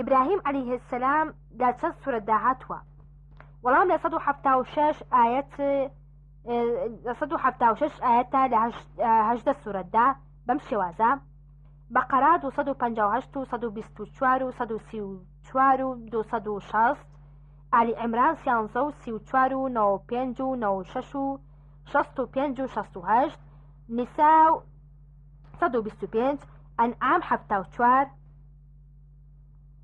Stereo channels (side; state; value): both; identical; correlation 1.00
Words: عەلەیهی سەلام لە چەند سوورەتدا هاتووە؟ وەڵام لە 176 ئاەتە لە 18 سوورەتدا بەم شێوازە: بەقەرە 258 و 124 و 134 و 260، ئالی عیمران 13 و 34 و 95 و 96 و 65 و 68، نیسا 125، ئەنعام 74،